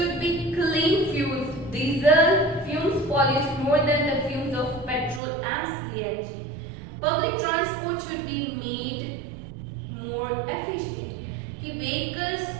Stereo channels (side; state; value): left; drops out; at 5.2 s